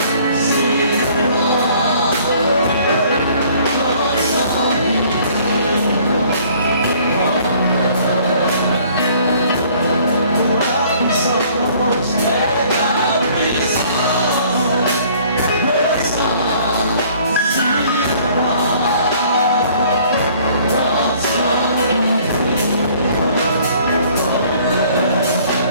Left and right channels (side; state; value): both; inverted; correlation -0.57